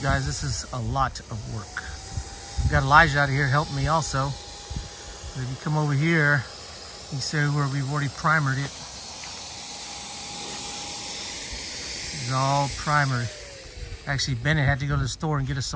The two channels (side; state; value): both; identical; correlation 1.00